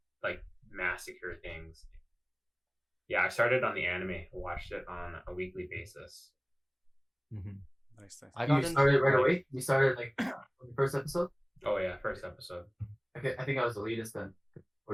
like massacre things. Yeah, I started on the anime, watched it on a weekly basis. Mm-hmm. Nice. I got You into started right like, away. You started like on the first episode. Oh yeah, first episode. Okay, I think I was the latest then.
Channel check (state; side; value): identical; both; correlation 1.00